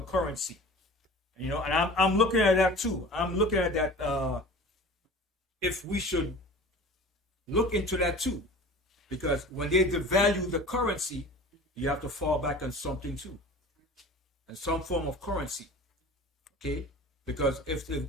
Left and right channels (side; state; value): both; normal; correlation 0.40